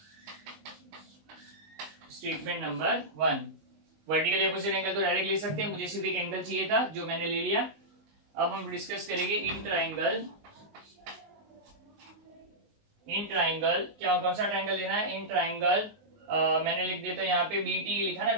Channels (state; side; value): late; left; 19 ms